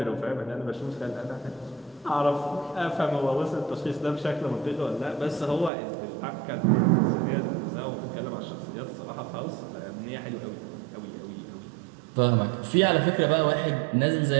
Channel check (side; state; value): left; drops out; at 5.7 s